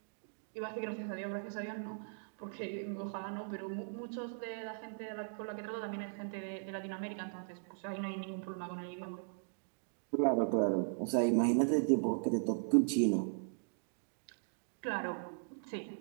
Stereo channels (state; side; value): silent; left; digital silence